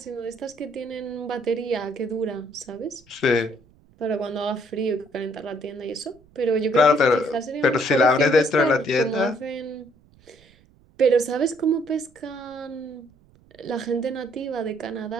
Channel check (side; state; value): right; noise; rumble, 30 dB below the sound